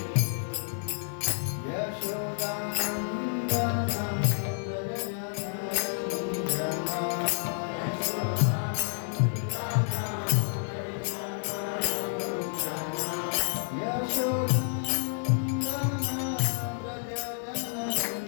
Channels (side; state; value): right; silent; digital silence